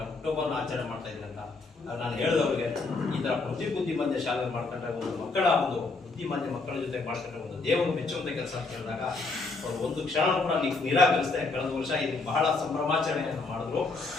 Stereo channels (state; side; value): quieter; right; 3.7 dB